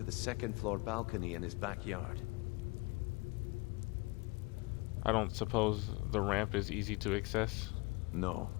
the second-floor balcony in his backyard. I don't suppose the ramp is easy to access? No.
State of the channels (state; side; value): quieter; right; 25.1 dB